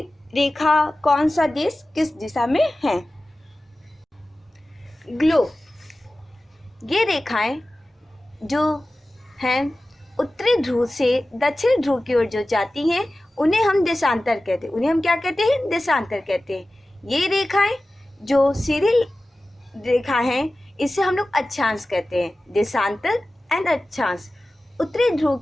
रेखा, कौन सा देश किस दिशा में है। ग्लोब, ये रेखाएं जो हैं उत्तरी ध्रुव से दक्षिण ध्रुव की ओर जो जाती हैं, उन्हें हम देशांतर कहते हैं। उन्हें हम क्या कहते हैं? देशांतर कहते हैं। ये रेखाएं जो सीधी रेखा हैं, इसे हम लोग अक्षांश कहते हैं। देशांतर एंड अक्षांश। उत्तरी ध्रुव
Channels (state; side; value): normal; both; correlation 0.96